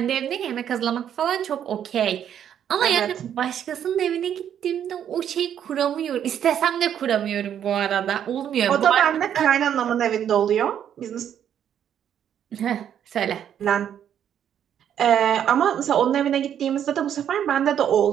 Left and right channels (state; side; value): quieter; left; 9.5 dB